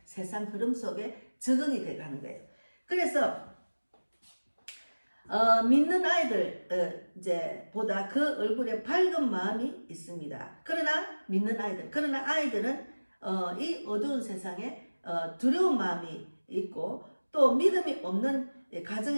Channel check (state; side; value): inverted; both; correlation -1.00